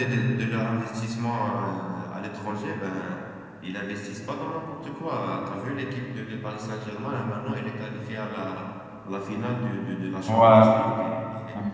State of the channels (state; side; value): identical; both; correlation 1.00